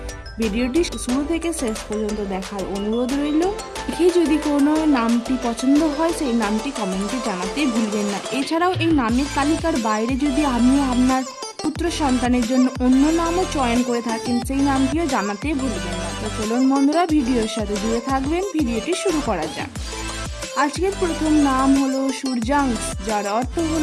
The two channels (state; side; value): identical; both; correlation 1.00